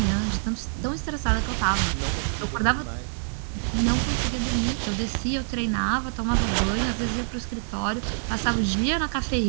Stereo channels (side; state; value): left; silent; digital silence